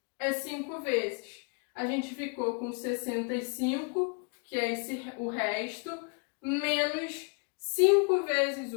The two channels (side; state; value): right; quieter; 36.8 dB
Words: é 5 vezes. A gente ficou com 65, que é o resto, menos 5 vezes